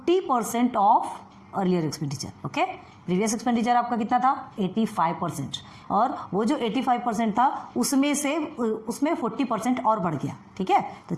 of earlier expenditure. Okay, previous expenditure आपका कितना था, 85%, और वो जो 85% था उसमें 40% और बढ़ गया। ठीक है, तो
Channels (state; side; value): identical; both; correlation 1.00